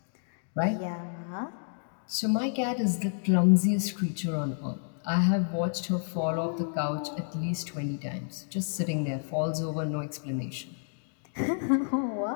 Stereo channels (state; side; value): silent; right; digital silence